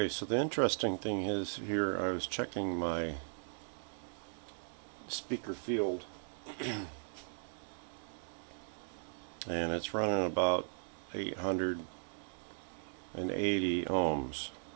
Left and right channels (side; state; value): left; silent; digital silence